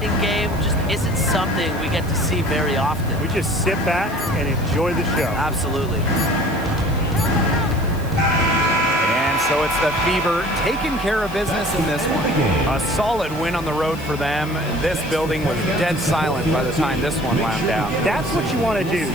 game just isn't something we get to see very often. We just sit back and enjoy the show. Absolutely. And so it's the Fever taking care of business in this one. A solid win on the road for them. This building was dead silent by the time this one wound down. That's what you want to do.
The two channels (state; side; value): noise; left; hiss, 19 dB below the sound